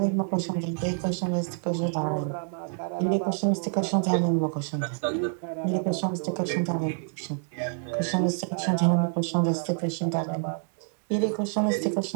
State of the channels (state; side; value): silent; left; 60 dB below the other